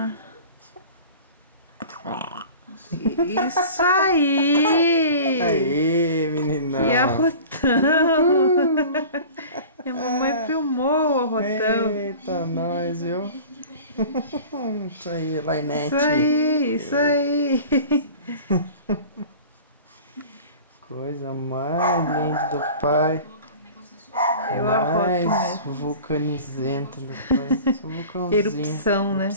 Isso aí! Aê, meninão! E arrotão! E a mamãe filmou o arrotão. Eita, nós, viu? Isso aí, Lainete. Isso aí! Coisa mais linda do pai. Eu arroto Mais mesmo. vulcanizenta do pai. Só vulcãozinho. Erupção, né?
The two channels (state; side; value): inverted; both; correlation -0.40